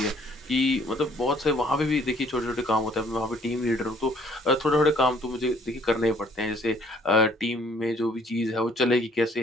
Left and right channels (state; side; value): normal; both; correlation 0.61